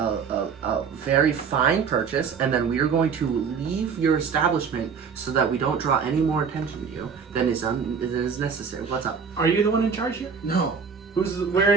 very fine purchase, and then we are going to leave your establishment so that we don't draw any more attention to you than is necessary. What's up? Are you the one in charge here? No.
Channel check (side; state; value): left; quieter; 6.1 dB